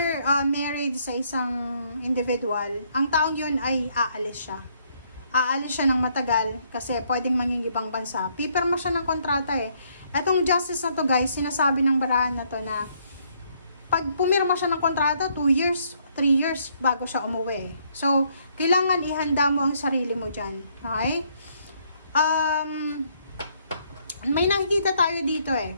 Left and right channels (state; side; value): inverted; both; correlation -0.69